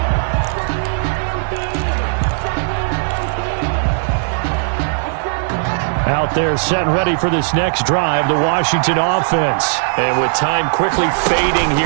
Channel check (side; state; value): left; silent; digital silence